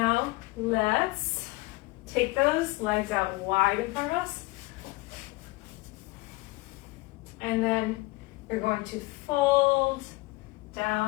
let's take those legs out wide in front of us. And then you're going to fold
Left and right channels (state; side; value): quieter; right; 22.3 dB